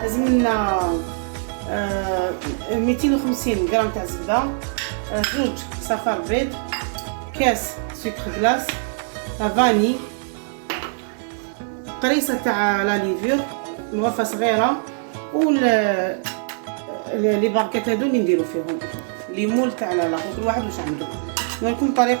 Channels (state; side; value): silent; left; digital silence